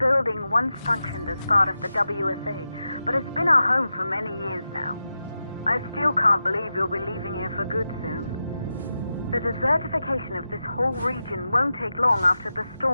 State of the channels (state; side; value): inverted; both; correlation -0.91